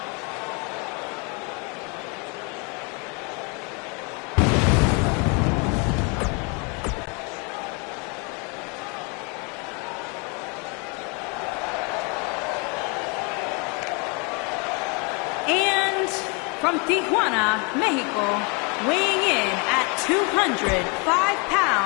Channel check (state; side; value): quieter; right; 33.0 dB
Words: From Tijuana, Mexico, weighing in at 205